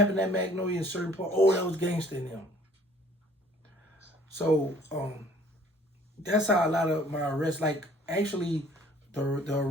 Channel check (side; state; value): both; normal; correlation 0.56